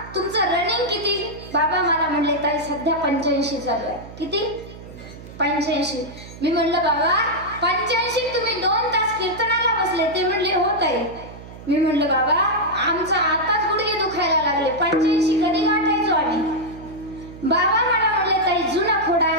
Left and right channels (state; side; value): noise; right; hum, 16 dB below the sound